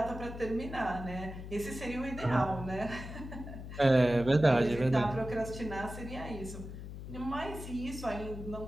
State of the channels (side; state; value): left; noise; hum, 10 dB below the sound